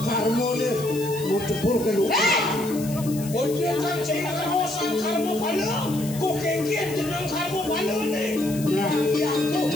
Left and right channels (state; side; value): noise; left; hiss, 13 dB below the sound